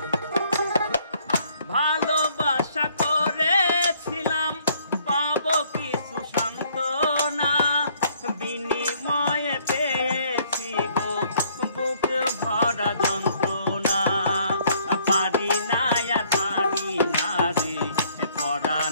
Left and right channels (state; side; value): inverted; both; correlation -0.63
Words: ভালোবাসা করেছিলাম পাবো কিছু সান্ত্বনা, বিনিময়ে পেয়েছি গো বুক ভরা যন্ত্রণা। পারি না আর পারি না রে